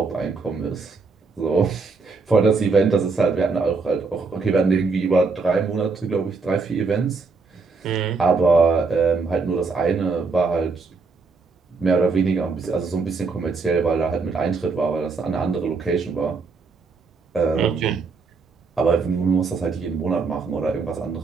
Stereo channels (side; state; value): left; quieter; 4.4 dB